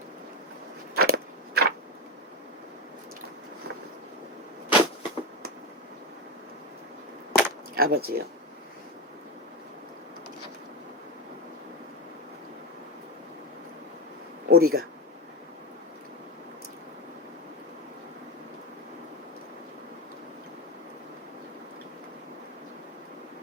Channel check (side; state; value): both; normal; correlation 0.14